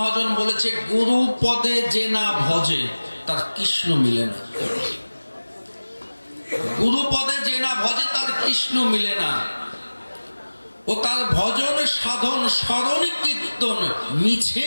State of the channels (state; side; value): inverted; both; correlation -1.00